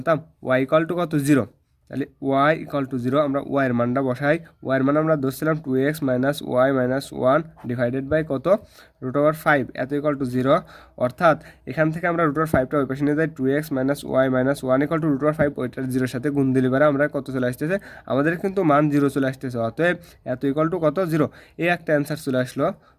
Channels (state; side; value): identical; both; correlation 1.00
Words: y = কত 0। তাহলে y = 0, আমরা y এর মানটা বসাই, y এর মান আমরা ধরছিলাম 2x - y - 1 ডিভাইডেড বাই কত √5, এত = 0। অর্থাৎ এখান থেকে আমরা √5টা ওই পাশে নিয়ে যাই, 2x - y - 1 √5, ওইটার 0-এর সাথে গুণ দিলে পারে আমরা কত চলে আসতেছে, আমাদের কিন্তু মান 0 চলে আসতেছে। অতএব এত = কত 0, এই একটা অ্যান্সার চলে আসলো।